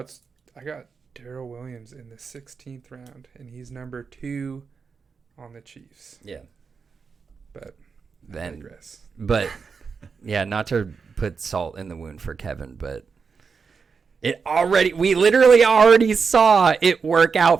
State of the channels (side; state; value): left; quieter; 5.4 dB